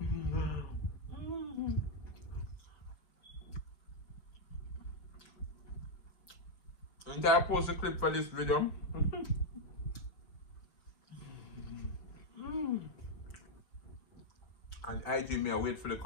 And I post a clip for this video. And IG me, I wait for the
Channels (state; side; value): late; right; 5.3 ms